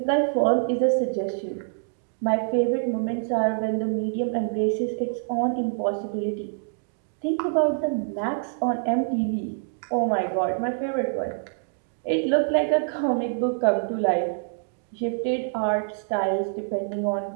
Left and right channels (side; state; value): left; silent; digital silence